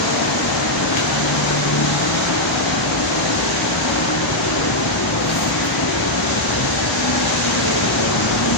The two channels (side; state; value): both; normal; correlation -0.02